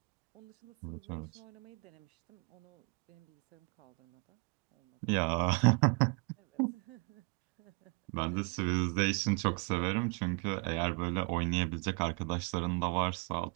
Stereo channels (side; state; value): left; quieter; 33.3 dB